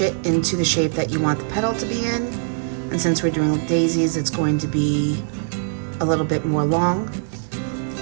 it into the shape that you want the petal to be in. And since we're doing daisies, it's going to be a little bit more long.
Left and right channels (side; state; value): left; silent; 64 dB below the other